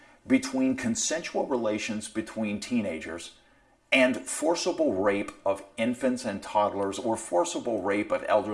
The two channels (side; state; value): both; identical; correlation 1.00